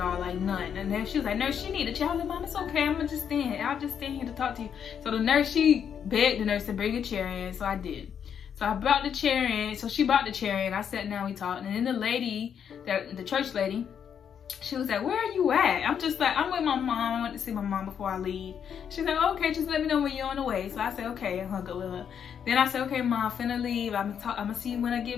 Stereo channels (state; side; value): quieter; right; 8.0 dB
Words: all, like none. And then she was like, nurse, she need a chair. I was like, mom, it's okay. I'm gonna just stand. I'll just stand here to talk to you. So the nurse, she begged the nurse to bring a chair in, so I did. So I brought the chair in. So she brought the chair in. I sat down, we talked. And then the lady, the church lady, she was like, where are you at? I'm just like, I'm with my mom. I went to see my mom before I leave. She's like, okay, just let me know when you're on the way. So I said, okay, and hung up with her. Then I said, okay, Mom, finna leave. I'm gonna see you when I